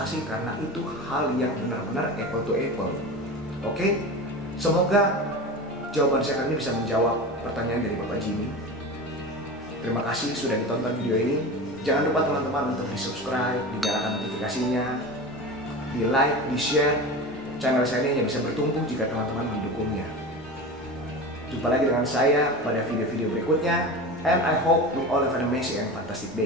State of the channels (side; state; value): both; normal; correlation 0.29